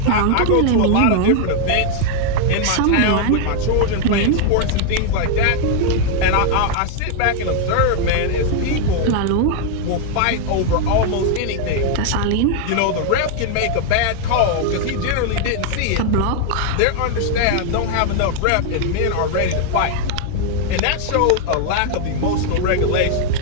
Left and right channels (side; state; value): both; different; correlation 0.00